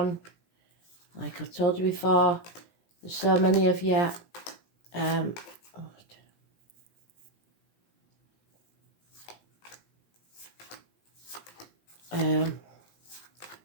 Like I've told you before, there's so many of you.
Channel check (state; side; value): late; right; 17 ms